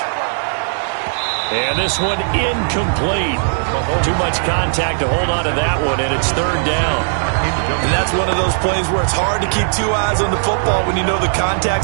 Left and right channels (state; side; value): silent; left; digital silence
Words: And this one incomplete. Too much contact to hold on to that one, and it's 3rd down. And that's one of those plays where it's hard to keep 2 eyes on the football when you know the